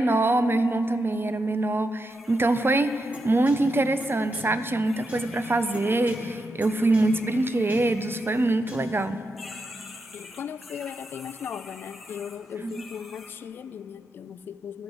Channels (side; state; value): both; normal; correlation 0.85